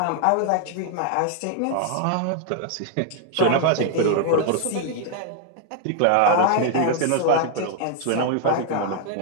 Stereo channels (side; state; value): both; different; correlation 0.00